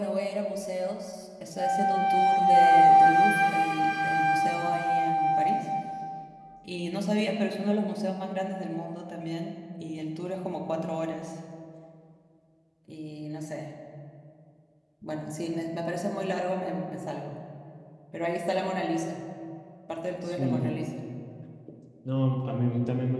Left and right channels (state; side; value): identical; both; correlation 1.00